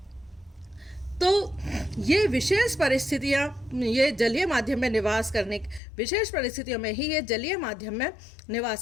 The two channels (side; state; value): right; drops out; at 5.8 s